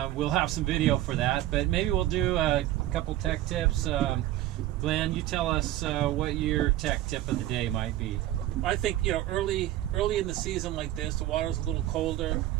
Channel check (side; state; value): left; quieter; 14.4 dB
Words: We'll have some video for that, but maybe we'll do a couple tech tips. Glenn, you tell us what your tech tip of the day might be. I think, early in the season like this, the water's a little colder.